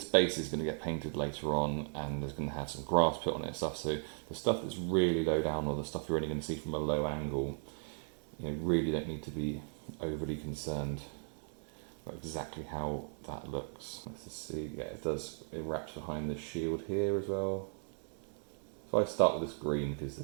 base is going to get painted later on, and there's going to have some grass put on it and stuff, so the stuff that's really low down, or the stuff you're only going to see from a low angle, you know, really don't need to be overly concerned about exactly how that looks. Let's just see, yeah, it wraps behind the shield here as well. So I start with this green because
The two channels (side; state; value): left; silent; 53 dB below the other